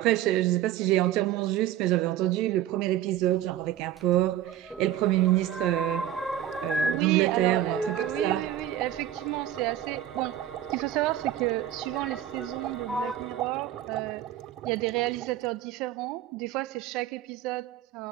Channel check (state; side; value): quieter; left; 11.8 dB